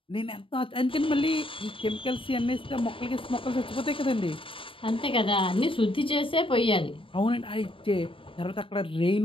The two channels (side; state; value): right; late; 0.25 ms